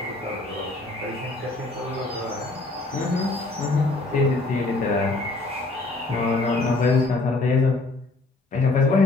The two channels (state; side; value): quieter; right; 3.2 dB